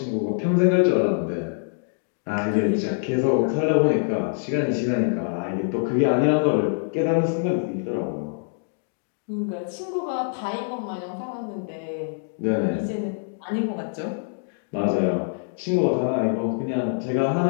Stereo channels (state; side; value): silent; right; digital silence